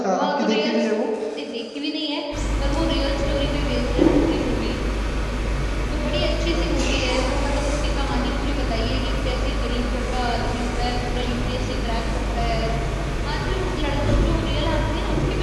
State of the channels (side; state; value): both; identical; correlation 1.00